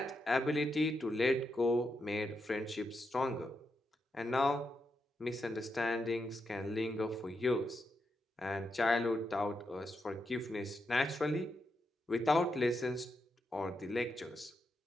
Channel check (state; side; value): normal; both; correlation 0.84